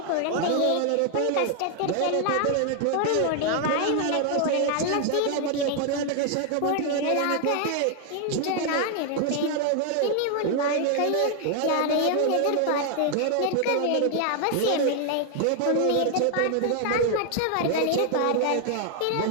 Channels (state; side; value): different; both; correlation 0.00